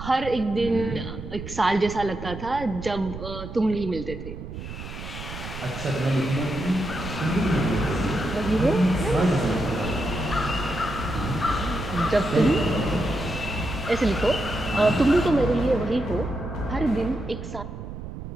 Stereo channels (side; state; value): right; noise; rumble, 10 dB below the sound